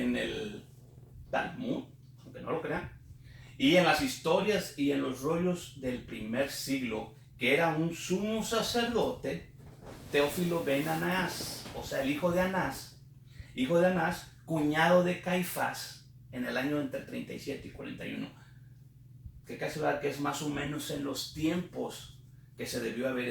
el Talmud, aunque no lo crean, y en las historias y en los rollos del primer siglo, que era un sumo sacerdote, Teófilo ben Anás, o sea, el hijo de Anás, cuñado de Caifás, en el año entre 37 y 41. Que casi verdad que es más o menos en los tiempos que se debió haber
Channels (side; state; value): both; identical; correlation 1.00